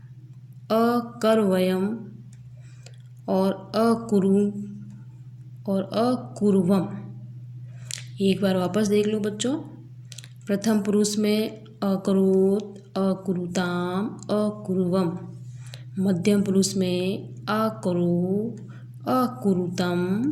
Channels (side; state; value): both; identical; correlation 1.00